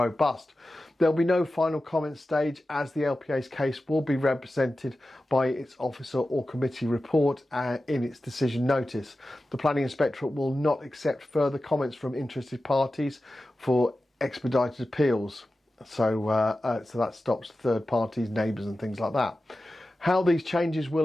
There'll be no final comment stage as the LPA's case will be represented by its officer or committee report in its decision notice. The Planning Inspectorate will not accept further comments from interested parties for expedited appeals. So that stops third parties, neighbours and things like that. How these changes will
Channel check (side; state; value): both; normal; correlation 0.94